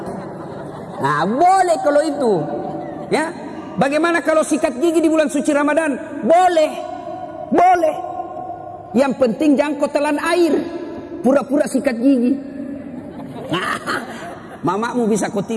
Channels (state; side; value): identical; both; correlation 1.00